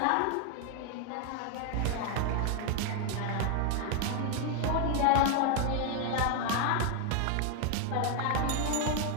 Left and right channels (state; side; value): different; both; correlation 0.00